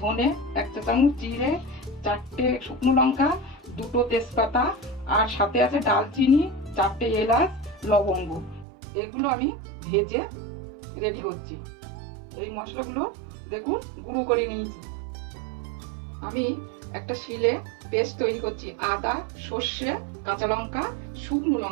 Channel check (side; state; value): left; drops out; at 8.7 s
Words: ধনে, 1 চা চামচ জিরে, 4টে শুকনো লঙ্কা, 2টো তেজপাতা, আর সাথে আছে ডালচিনি, 4টে এলাচ, লবঙ্গ। এগুলো আমি ভেজে রেডি করছি। এই মশলাগুলো দেখুন গুঁড়ো করে নিয়েছি। আমি একটা শিলে পেস্ট তৈরি করছি। আদা, সর্ষে, কাঁচা লঙ্কা, শুকনো